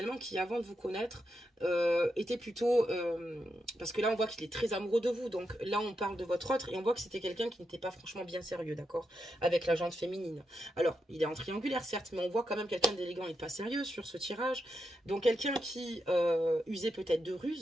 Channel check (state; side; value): normal; both; correlation 0.85